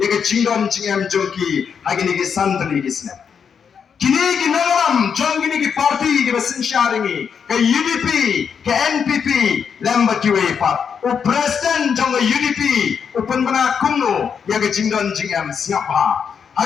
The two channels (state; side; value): quieter; right; 6.9 dB